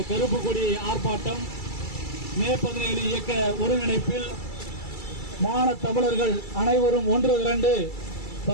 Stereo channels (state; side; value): late; right; 2.3 ms